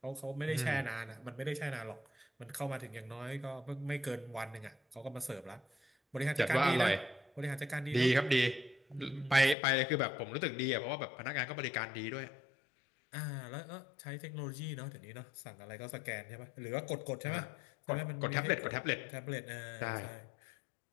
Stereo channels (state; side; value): drops out; right; at 9.6 s